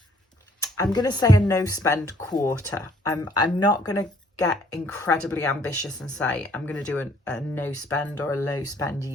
I'm going to say, a no spend quarter. I'm not going to get incredibly ambitious and say I'm going to do a no spend or a low spend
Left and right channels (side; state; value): both; normal; correlation 0.62